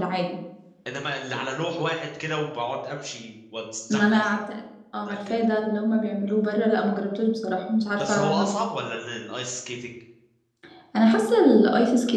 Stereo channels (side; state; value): both; identical; correlation 1.00